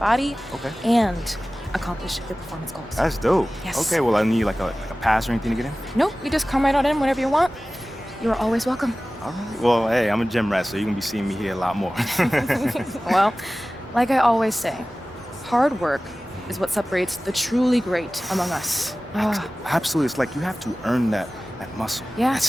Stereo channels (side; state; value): both; normal; correlation 0.97